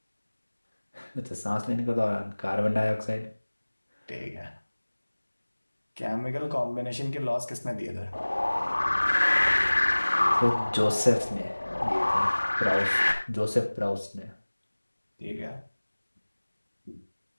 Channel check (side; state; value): both; inverted; correlation -1.00